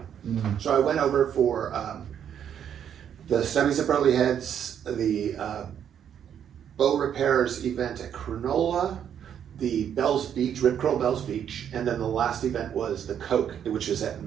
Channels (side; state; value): left; quieter; 9.0 dB